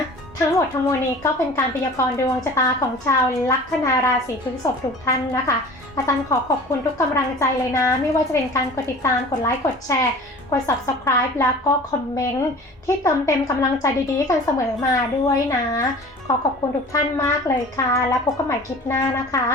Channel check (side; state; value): both; normal; correlation 0.42